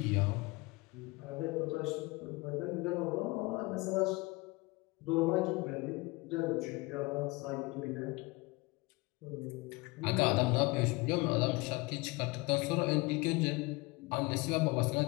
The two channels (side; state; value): right; quieter; 24.5 dB